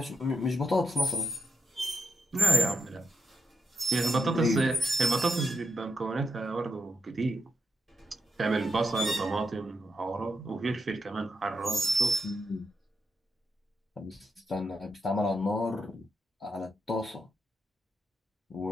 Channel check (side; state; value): both; normal; correlation 0.84